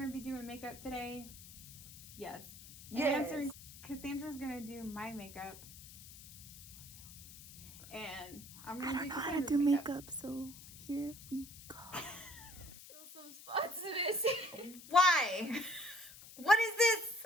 to be doing makeup today. Yes. Yes. Cassandra's going to do my makeup. And I'm I going to don't do know how to Cassandra's do makeup. makeup, so here we go. Still some spots missing. Why? What is this?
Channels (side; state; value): left; noise; hiss, 16 dB below the sound